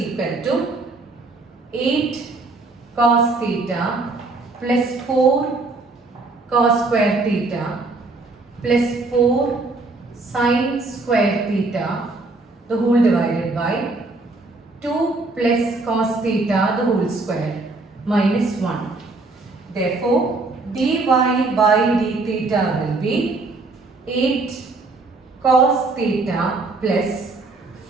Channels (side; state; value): left; quieter; 3.4 dB